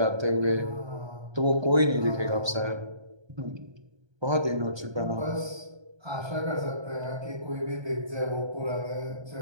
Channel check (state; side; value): late; left; 1.3 ms